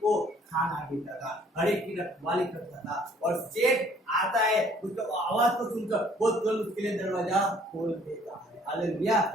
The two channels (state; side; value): normal; both; correlation 0.59